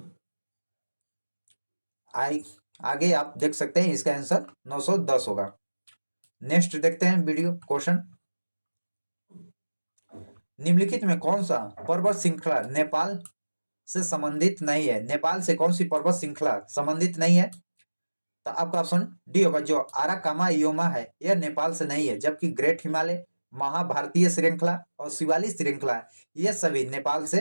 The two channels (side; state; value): both; inverted; correlation -1.00